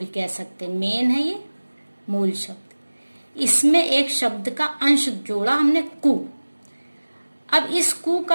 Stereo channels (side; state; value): both; inverted; correlation -1.00